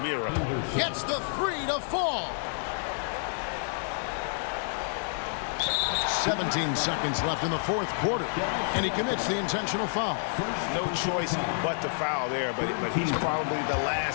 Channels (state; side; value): silent; right; digital silence